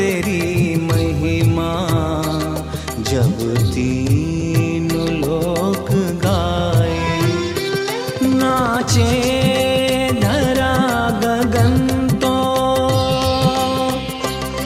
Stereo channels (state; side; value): identical; both; correlation 1.00